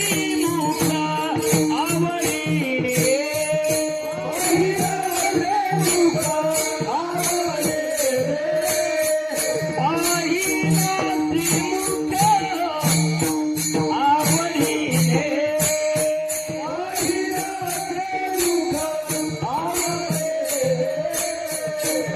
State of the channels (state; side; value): identical; both; correlation 1.00